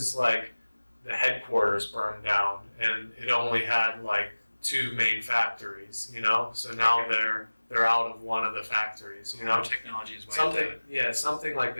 like the headquarters burned down and it only had like 2 main factories, So now Okay. they're out of one of the factories, Technology is wiped out. Something like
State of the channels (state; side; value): inverted; both; correlation -1.00